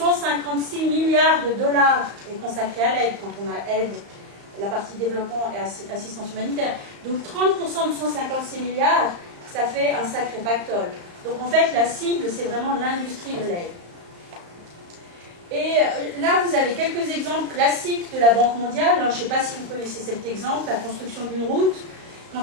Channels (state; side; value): late; left; 35 ms